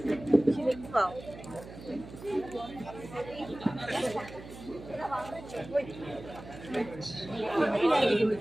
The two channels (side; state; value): right; noise; hum, 15 dB below the sound